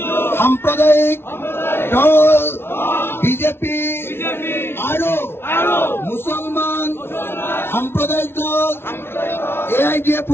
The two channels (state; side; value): late; right; 0.12 ms